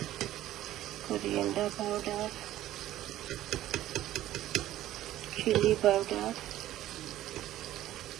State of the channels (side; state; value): left; quieter; 13.9 dB